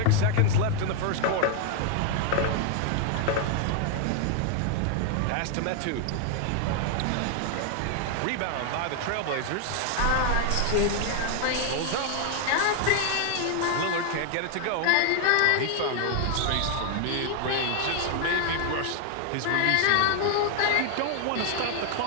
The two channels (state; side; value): different; both; correlation 0.00